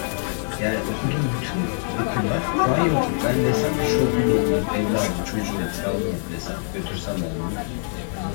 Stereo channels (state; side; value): silent; right; 63 dB below the other